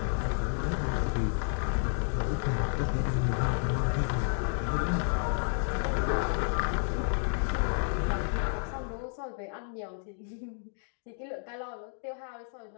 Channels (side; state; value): right; silent; 57 dB below the other